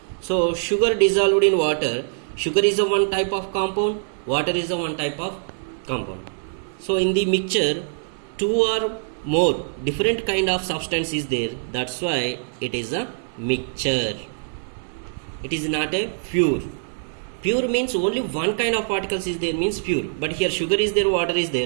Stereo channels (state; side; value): silent; left; 63 dB below the other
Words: So sugar dissolved in water, sugar is a one type of compound, water is a one type of compound. So in the mixture two or more different kind of substance is there, that's why it is a mixture. It is not a pure. Pure means only one kind of particles is there means pure, but here sugar is there, water is